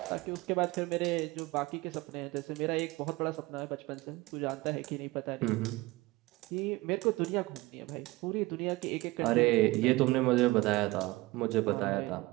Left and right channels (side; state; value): left; quieter; 20.9 dB